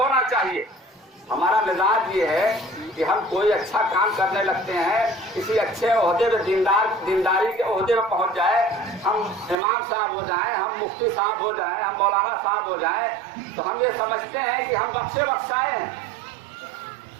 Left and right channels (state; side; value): drops out; left; at 9.6 s